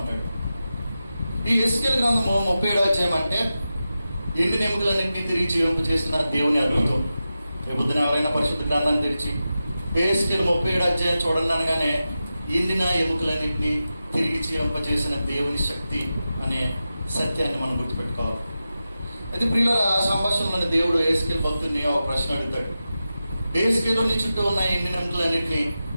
ఈ యెహెజ్కేలు గ్రంథము 37వ అధ్యాయం అంటే ఎండిన ఎముకలన్నింటినీ తిరిగి జీవింపజేసిన దేవుని అద్భుతం. రేపొద్దున ఎవరైనా పరిశుద్ధ గ్రంథాన్ని తెరిచి యెహెజ్కేలు 37వ అధ్యాయం చూడండి అనగానే ఎండిన ఎముకలన్నింటినీ తిరిగి జీవింపజేసిన దేవుని శక్తి అనే సత్యాన్ని మనం గుర్తుపెట్టుకోవాలి. అయితే ప్రియులారా, ఆ సంభాషణలోని దేవుడు యెహెజ్కేలు భక్తుడిని ఒక ప్రశ్న అడుగుతాడు. యెహెజ్కేలుని చుట్టూ ఉన్న ఎండిన ఎముకలన్నింటినీ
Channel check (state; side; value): inverted; both; correlation -0.92